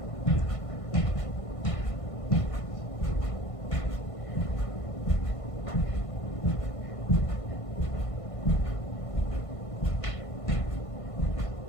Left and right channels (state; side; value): late; right; 1.5 ms